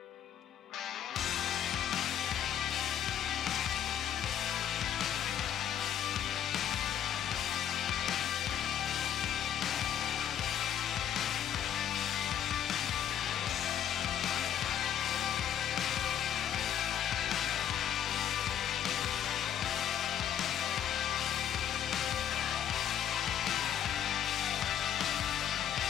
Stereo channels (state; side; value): quieter; right; 9.8 dB